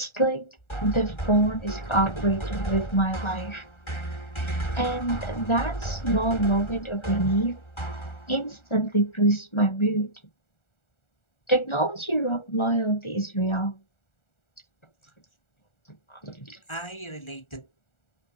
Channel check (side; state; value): right; late; 1.4 ms